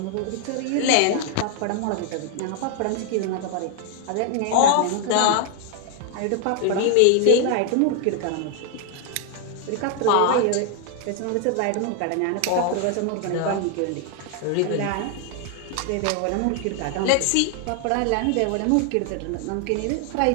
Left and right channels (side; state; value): both; different; correlation 0.00